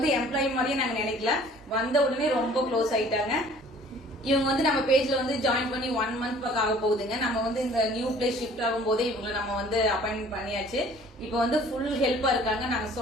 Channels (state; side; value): normal; both; correlation 0.52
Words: எம்ப்ளாயி மாதிரியே நாங்க நினைக்கல, வந்த உடனே ரொம்ப க்ளோஸ் ஆயிட்டாங்க. இவங்க வந்து நம்ம பேஜ்ல வந்து ஜாயின் பண்ணி 1 month பக்கம் ஆக போகுதுங்க. நம்ம வந்து இந்த நியூ பிளேஸ் ஷிஃப்ட் ஆகும் போதே இவங்களை நம்ம வந்து அப்பாயின்மெண்ட் பண்ணியாச்சு. இப்ப வந்து ஃபுல் ஹெல்ப்பா இருக்காங்க. நாங்க